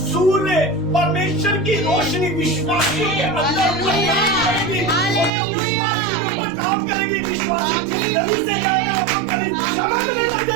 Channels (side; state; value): left; drops out; at 5.3 s